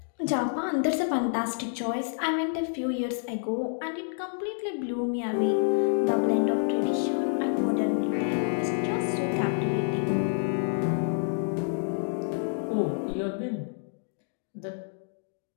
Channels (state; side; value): silent; right; digital silence